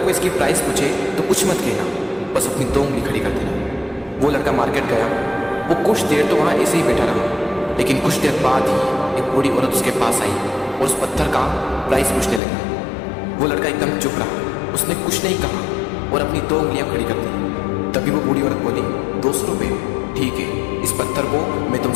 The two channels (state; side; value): drops out; right; at 12.4 s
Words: कोई इसकी प्राइस पूछे तो कुछ मत कहना, बस अपनी 2 उंगली खड़ी कर देना। वो लड़का मार्केट गया। वो कुछ देर तो वहाँ ऐसे ही बैठा रहा, लेकिन कुछ देर बाद ही एक बूढ़ी औरत उसके पास आई और उस पत्थर का प्राइस पूछने लगी। वो लड़का एकदम चुप रहा, उसने कुछ नहीं कहा और अपनी 2 उंगलियां खड़ी कर दी। तभी वो बूढ़ी औरत बोली, 200 रुपये, ठीक है, इस पत्थर को मैं